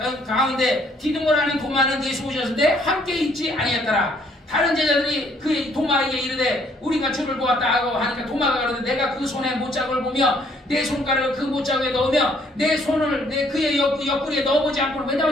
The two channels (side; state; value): both; normal; correlation 0.64